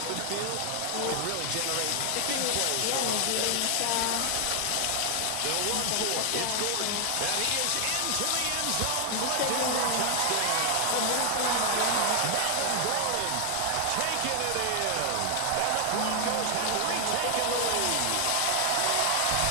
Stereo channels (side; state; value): both; different; correlation 0.00